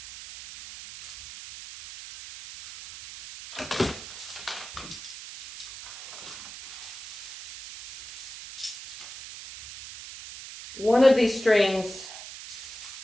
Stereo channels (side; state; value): right; noise; hiss, 12 dB below the sound